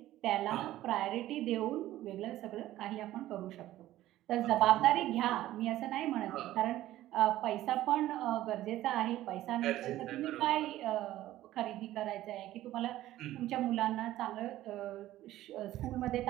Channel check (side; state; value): left; quieter; 14.6 dB